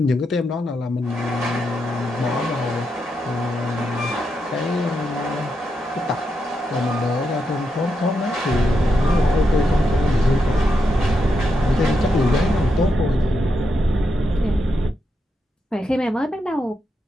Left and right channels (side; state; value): both; normal; correlation 0.84